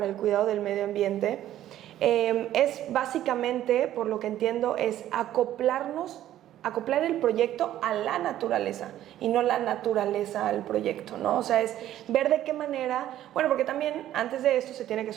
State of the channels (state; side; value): quieter; left; 12.6 dB